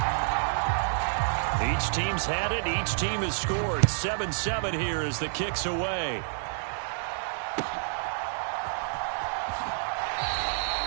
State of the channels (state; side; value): silent; left; 59 dB below the other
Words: Each team's had it. Each team has scored. 7-7 here as the kick's away.